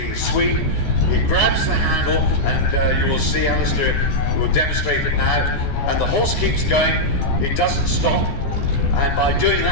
sweep, he grabs the handle, and you will see Alistair will demonstrate it now, and the horse keeps going, it doesn't stop, and by doing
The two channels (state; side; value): late; right; 14 ms